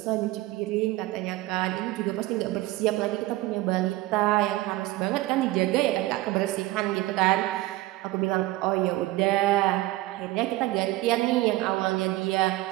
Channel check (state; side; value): quieter; left; 18.0 dB